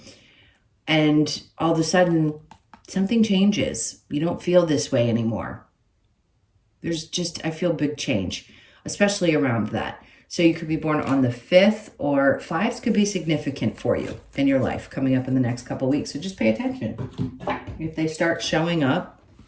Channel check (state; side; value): identical; both; correlation 1.00